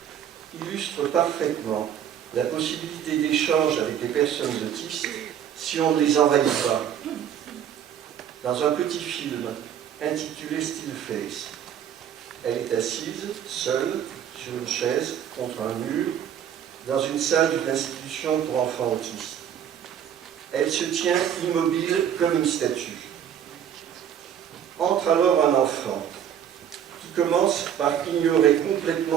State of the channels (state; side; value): quieter; left; 9.4 dB